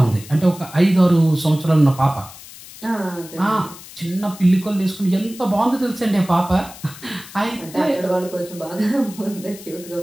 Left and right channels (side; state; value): left; noise; hiss, 17 dB below the sound